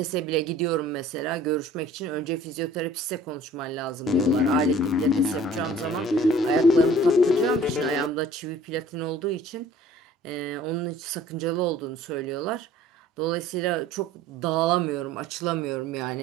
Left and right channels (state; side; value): normal; both; correlation 0.51